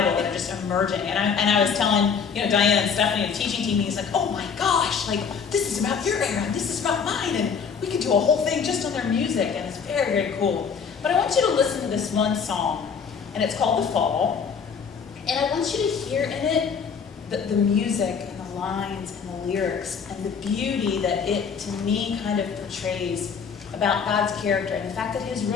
that are just emerging. And I was telling, Diane and Stephanie, the teaching team, he's like, oh my gosh, this is about your era, and this is about mine, and we could do a whole thing just on their music, and it's very, very cool. But I want you to listen to this one song, and it's called The Fall. And I want you to hear in it the music and the lines and the lyrics and the beauty that it, to me, kind of portrays about God's character, and the fact that his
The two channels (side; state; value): right; quieter; 6.3 dB